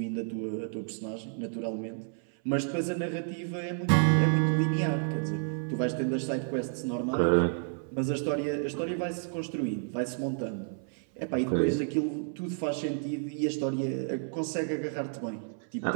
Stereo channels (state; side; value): silent; left; 57 dB below the other